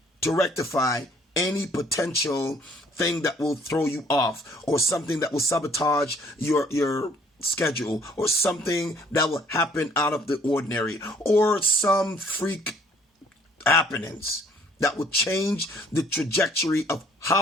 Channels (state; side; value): normal; both; correlation 0.60